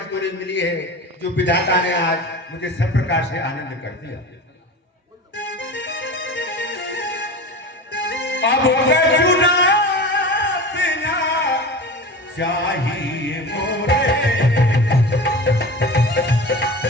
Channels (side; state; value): both; normal; correlation 0.31